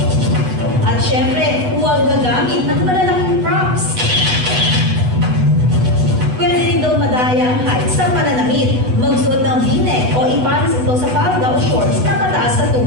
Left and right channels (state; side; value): late; left; 8.1 ms